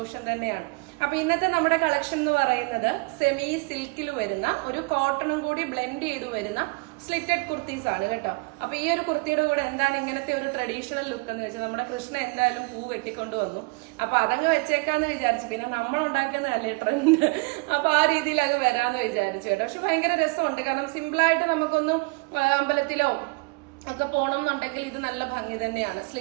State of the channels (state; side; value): quieter; left; 29.0 dB